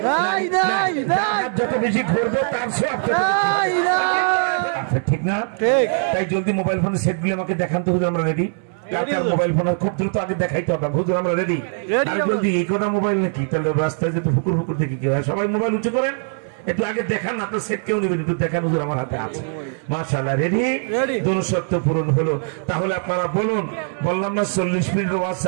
নাই নাই যত বেশি ঘুরবো তার সব ঠিক না? ঠিক। তাই জলদি মোবাইল ফোনের সেটগুলি আমাকে দেখান তো হুজুর, আমরা রেডি। মোবাইল ফোন খুব দ্রুত আগে দেখাইতে হবে হুজুর, আমরা রেডি। জলদি এই কথা মোবাইল নাকি, তাহলে রাস্তায় যেতে ফুকুর ফুকুর দেখি কি হয়। সবাই মোবাইল উঁচু করেন, একটু আগে দেখান, আপনার সেট কেউ নেবেন, একটু দেখান হুজুর আমার হাতে আছে। মাশাআল্লাহ রেডি, দুঃশর্ত পূরণ হলো। তাহলে আপনারা বলুন, বললাম না 40 মিনিটের ওয়াজ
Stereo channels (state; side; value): silent; left; 59 dB below the other